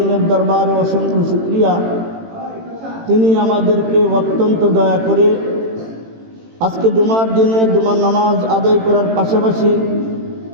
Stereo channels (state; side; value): late; left; 18 ms